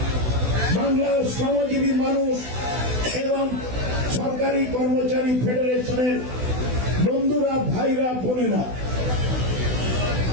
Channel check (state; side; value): late; left; 16 ms